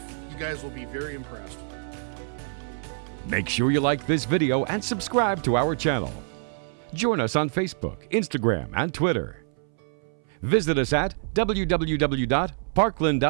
You guys will be very impressed. Make sure you like this video and subscribe to our channel. Join us on Facebook, Instagram, and Twitter. Visit us at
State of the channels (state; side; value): silent; left; 61 dB below the other